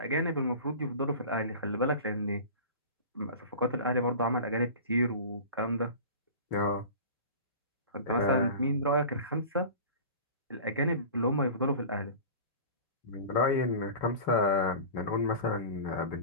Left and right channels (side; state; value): both; inverted; correlation -0.36